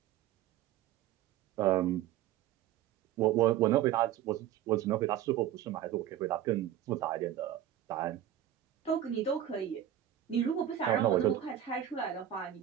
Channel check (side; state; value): left; quieter; 11.4 dB